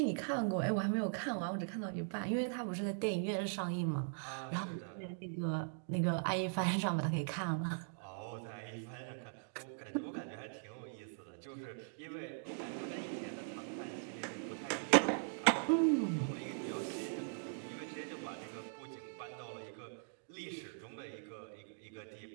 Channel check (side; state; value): left; silent; digital silence